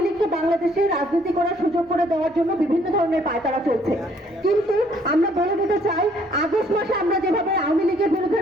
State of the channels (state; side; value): normal; both; correlation 0.63